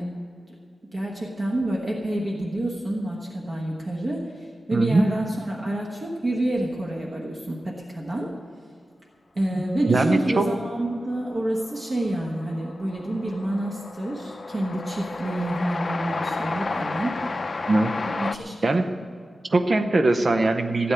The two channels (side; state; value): both; normal; correlation 0.94